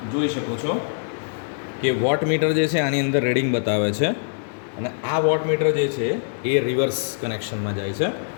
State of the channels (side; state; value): right; silent; 63 dB below the other